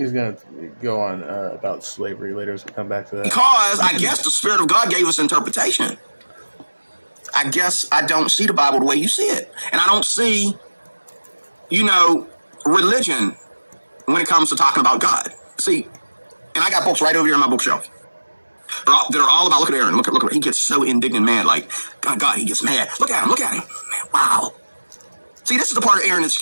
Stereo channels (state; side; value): inverted; both; correlation -1.00